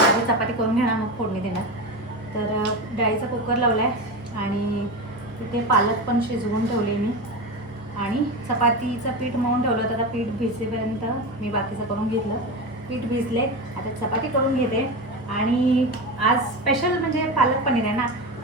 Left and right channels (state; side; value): normal; both; correlation 0.21